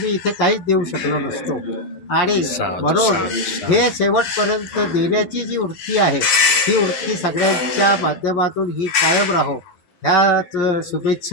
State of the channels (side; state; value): right; late; 11 ms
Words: इथे काहीच देऊ शकलो नसतो आणि म्हणून हे शेवटपर्यंत देण्याची जी वृत्ती आहे ही वृत्ती सगळ्यांच्या माध्यमातून ही कायम राहो, ह्याच